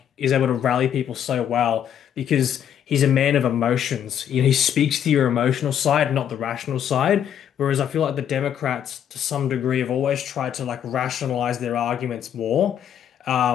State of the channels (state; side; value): quieter; right; 9.4 dB